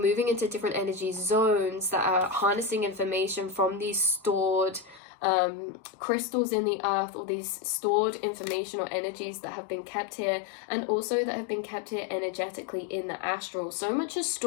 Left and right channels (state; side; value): drops out; right; at 5.0 s